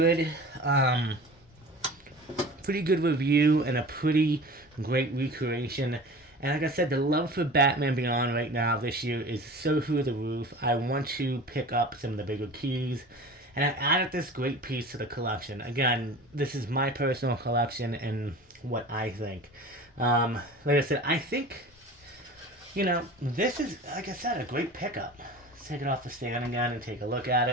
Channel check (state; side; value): normal; both; correlation 0.38